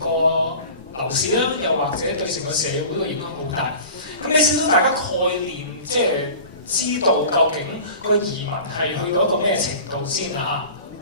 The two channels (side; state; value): both; inverted; correlation -0.39